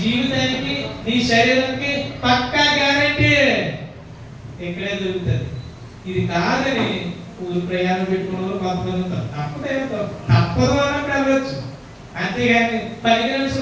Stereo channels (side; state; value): both; identical; correlation 1.00